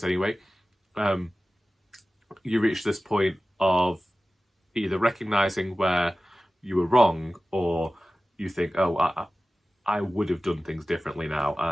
anyway, you reach this point of either recognising where you were wrong, or you think, oh, I would have done things differently now,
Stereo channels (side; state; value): both; normal; correlation 0.96